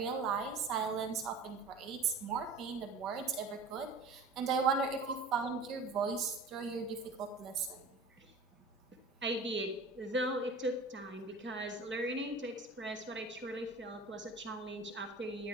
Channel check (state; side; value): quieter; left; 3.4 dB